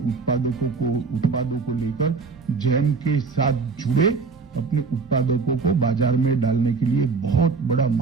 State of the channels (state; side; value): quieter; left; 4.7 dB